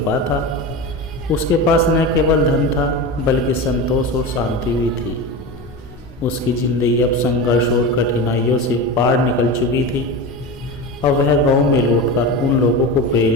था। उसके पास न केवल धन था, बल्कि संतोष और शांति भी थी। उसकी ज़िंदगी अब संघर्ष और कठिनाइयों से पार निकल चुकी थी। अब वह गांव में लौटकर उन लोगों को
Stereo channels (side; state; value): both; normal; correlation 0.24